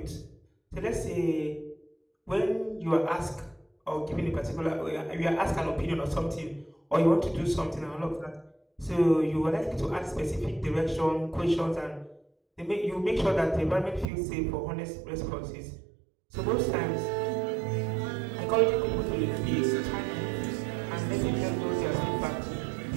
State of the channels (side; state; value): left; drops out; at 14.1 s